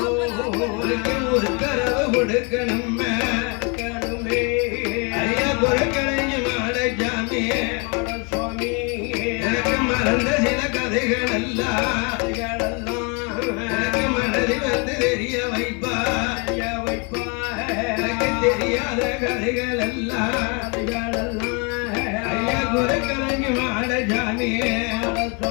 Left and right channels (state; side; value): quieter; right; 32.6 dB